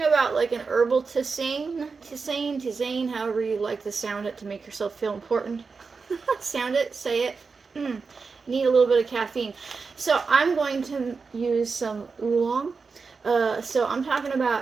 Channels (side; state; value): left; quieter; 4.8 dB